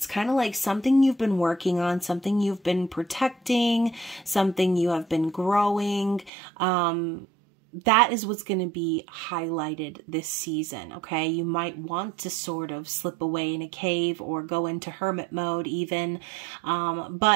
kind of like something you've been working on, something you've been protecting, something you have been growing. That is what's going to be highlighted this season, okay? You might want to sort of slip away in a cave or go into hermit mode even.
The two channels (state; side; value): drops out; left; at 6.3 s